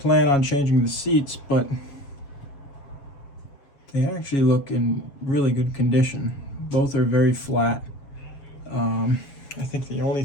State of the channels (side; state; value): right; late; 7.2 ms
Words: on changing the seats, but they actually look in really good condition. Both are very flat. I think the only